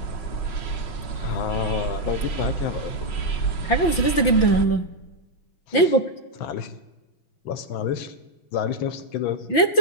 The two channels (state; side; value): late; right; 5.9 ms